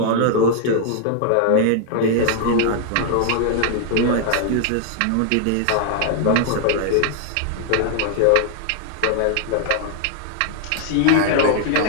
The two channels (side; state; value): both; different; correlation 0.00